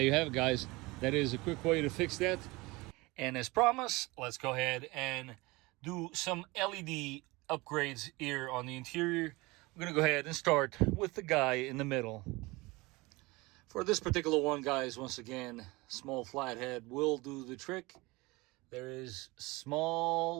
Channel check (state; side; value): quieter; left; 23.1 dB